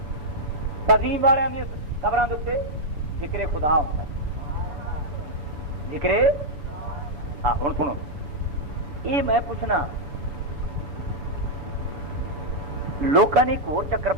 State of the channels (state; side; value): late; left; 7.0 ms